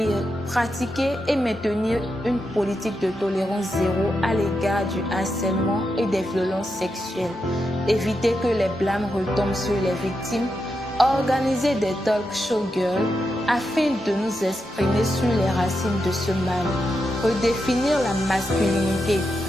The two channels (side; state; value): both; normal; correlation 0.86